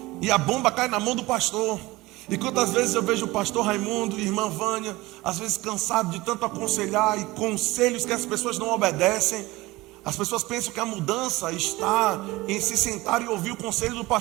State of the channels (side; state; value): left; quieter; 20.3 dB